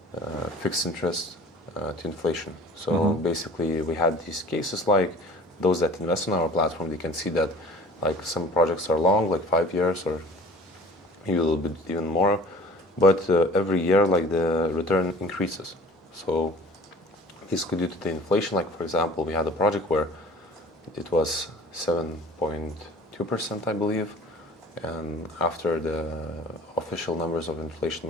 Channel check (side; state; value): both; normal; correlation 0.46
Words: fixed interest to inflation. So basically, we had these cases like those that invest on our platform. They can see that like some projects are long, like 5 years or a little bit even more, but every year like the return increases. So this could be due to the inflation. Like for example, we had a project where it was 7.2%, I believe, and after the official numbers of inflation